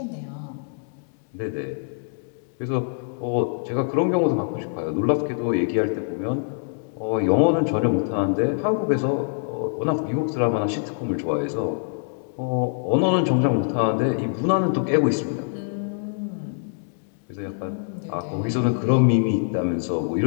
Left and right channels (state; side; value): silent; right; digital silence